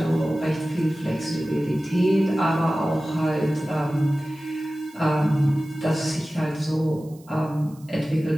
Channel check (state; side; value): noise; right; hiss, 27 dB below the sound